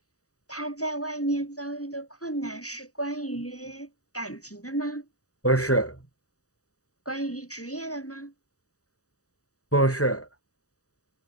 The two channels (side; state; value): right; late; 0.66 ms